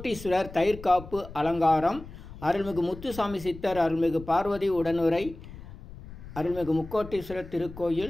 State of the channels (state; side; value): noise; left; rumble, 15 dB below the sound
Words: தயிர்காப்பு அலங்காரம். அருள்மிகு முத்துசாமி சித்தர் அருள்மிகு பார்வதி உடனுரை அருள்மிகு முக்கோட்டீஸ்வரர்